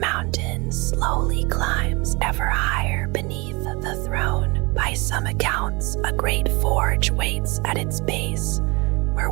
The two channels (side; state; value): left; quieter; 26.9 dB